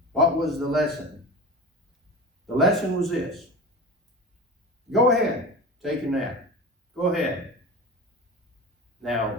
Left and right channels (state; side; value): normal; both; correlation 0.31